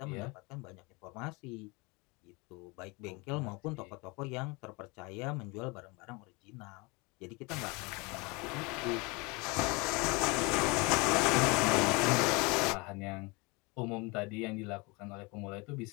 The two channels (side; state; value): right; quieter; 27.3 dB